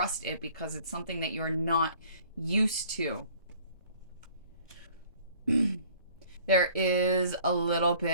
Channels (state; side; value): inverted; both; correlation -0.54